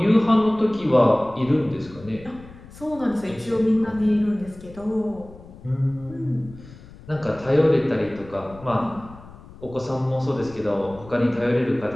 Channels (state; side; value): noise; left; rumble, 19 dB below the sound